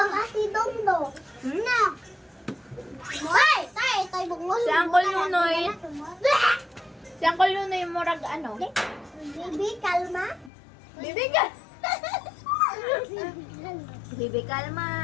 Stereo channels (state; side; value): drops out; right; at 10.5 s